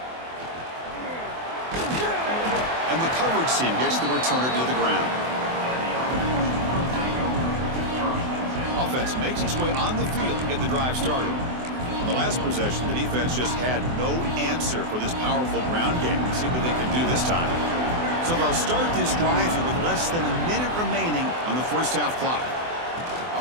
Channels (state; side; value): late; left; 24 ms